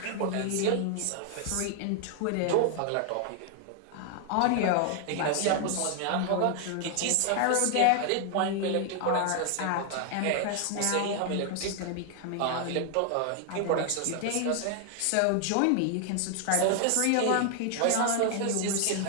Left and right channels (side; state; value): both; different; correlation 0.00